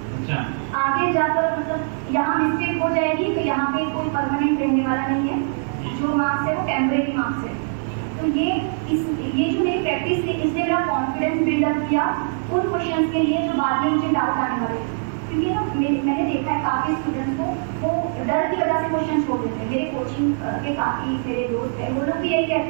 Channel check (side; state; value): left; silent; digital silence